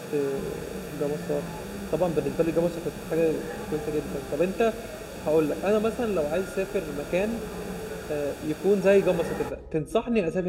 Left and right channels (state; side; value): identical; both; correlation 1.00